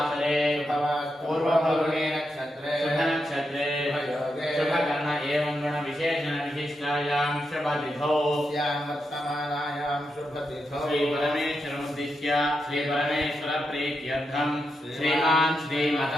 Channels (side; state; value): both; normal; correlation 0.85